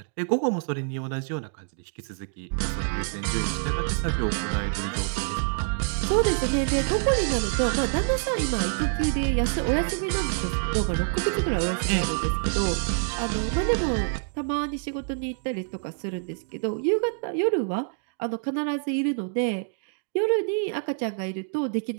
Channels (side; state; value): left; silent; 60 dB below the other